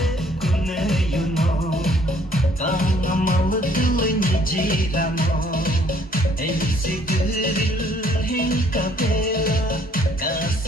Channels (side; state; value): both; normal; correlation 0.62